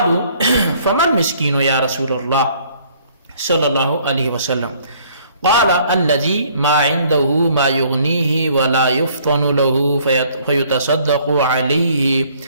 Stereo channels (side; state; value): both; inverted; correlation -0.60